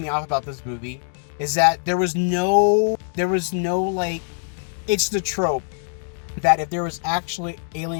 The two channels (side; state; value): right; silent; digital silence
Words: off about this movie is that there was no like, it's the trope that if there was actually